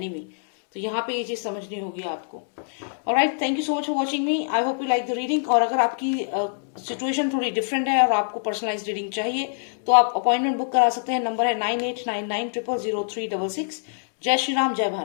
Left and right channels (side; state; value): right; silent; digital silence